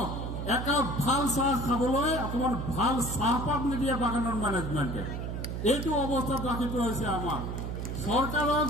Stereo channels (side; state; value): right; noise; hum, 4 dB below the sound